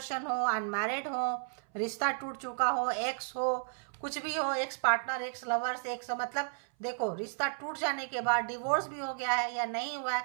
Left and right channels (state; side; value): silent; left; 56 dB below the other